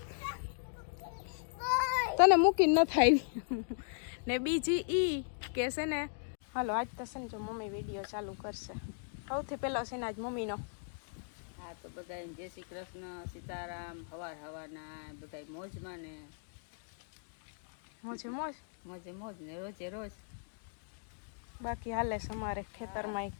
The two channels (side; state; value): right; silent; digital silence